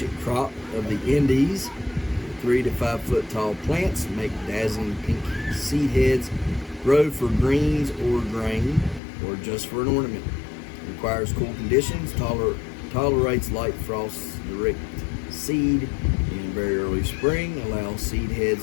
crop of the Indies. 3 to 5 foot tall plants make dazzling pink seed heads. Grow for greens or grain or just for an ornament. Requires cool conditions. Tolerates light frosts. Direct seed in very early spring. Allows seed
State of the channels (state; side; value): drops out; right; at 9.0 s